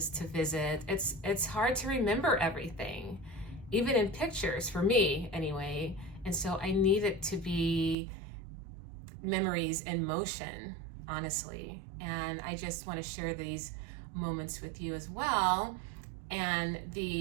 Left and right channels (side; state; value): left; drops out; at 8.0 s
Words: to visit. It's hard to remember everything, even in pictures, for me anyway. And so I need it to be memories in motion, honestly. And I just want to share these moments with you as well. And